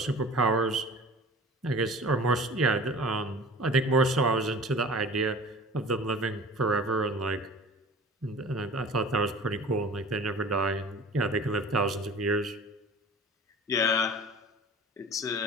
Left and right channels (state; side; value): normal; both; correlation 0.41